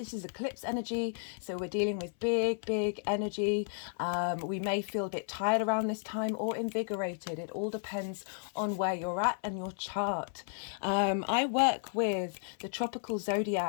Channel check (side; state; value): right; silent; 56 dB below the other